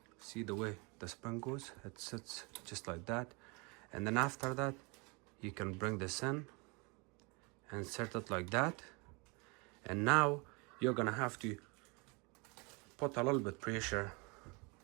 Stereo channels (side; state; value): left; quieter; 29.7 dB